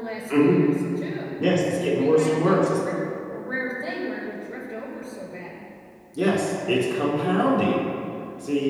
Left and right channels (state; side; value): identical; both; correlation 1.00